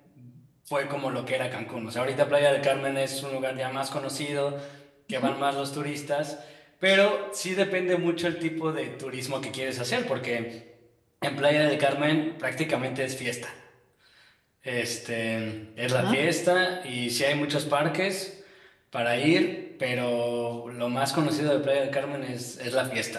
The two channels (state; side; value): identical; both; correlation 1.00